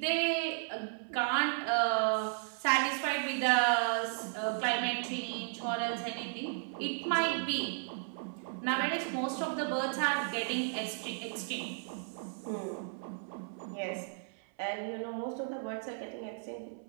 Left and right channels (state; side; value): silent; left; 55 dB below the other